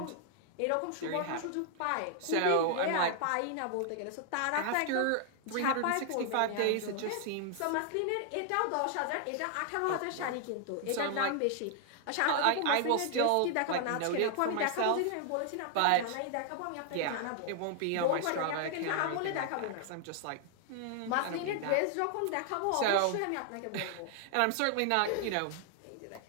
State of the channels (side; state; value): both; different; correlation 0.00